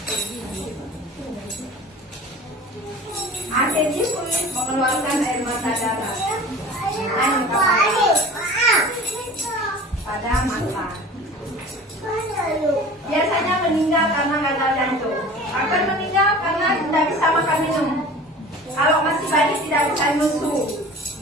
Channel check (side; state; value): both; normal; correlation 0.41